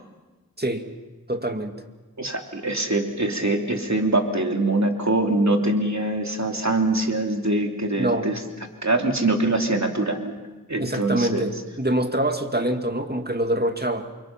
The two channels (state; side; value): normal; both; correlation 0.21